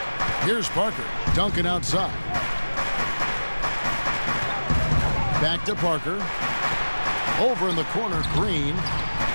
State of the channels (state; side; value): inverted; both; correlation -1.00